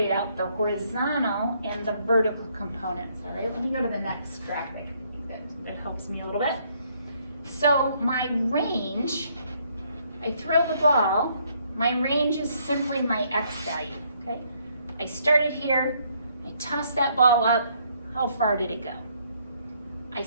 out the horizontal and the vertical components. All right, let me go to the next graphic. That helps me a little bit. So my range, I throw the ball, my range is simply my x value, okay? I started here, I toss that ball up, how far did it go? I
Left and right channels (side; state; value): both; inverted; correlation -0.69